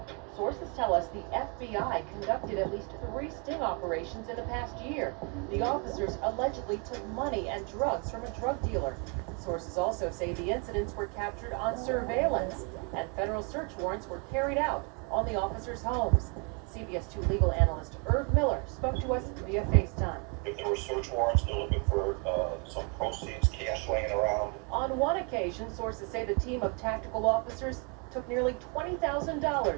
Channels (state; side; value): quieter; left; 36.2 dB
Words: Sources tell us the FBI conducted at least 3 sting operations in the past year. The officers allegedly took money and drugs from a drug dealer. Sources also say the incidents were captured on surveillance, and federal search warrants were carried out on the officers' homes. CBS 2 legal analyst Irv Miller spoke to us via FaceTime. If there were search warrants, they're looking for some proceeds, cash laying around. On one occasion, sources say the team of tactical officers took nearly